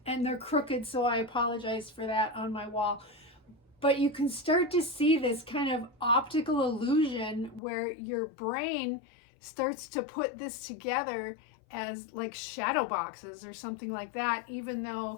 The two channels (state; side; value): drops out; right; at 7.6 s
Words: and they're crooked, so I apologize for that on my wall. But you can start to see this kind of optical illusion where your brain starts to put this together as like shadow boxes or something like that, even